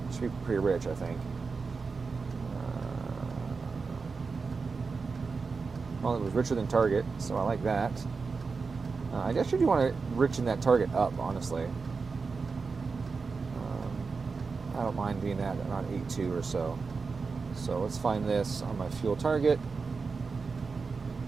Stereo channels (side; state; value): left; quieter; 4.7 dB